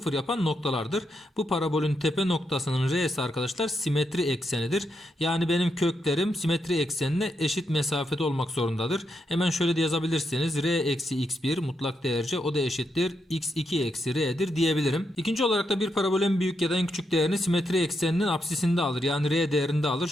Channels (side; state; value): both; normal; correlation 0.82